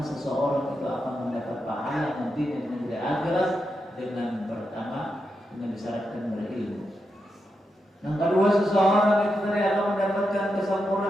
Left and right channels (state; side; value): normal; both; correlation 0.86